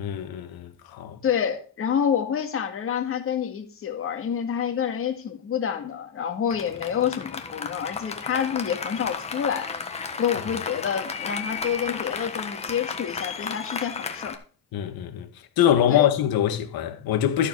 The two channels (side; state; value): right; quieter; 8.4 dB